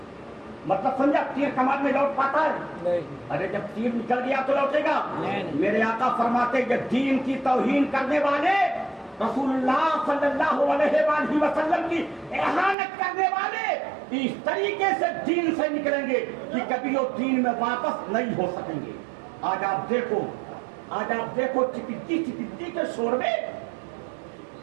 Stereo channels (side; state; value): left; drops out; at 12.8 s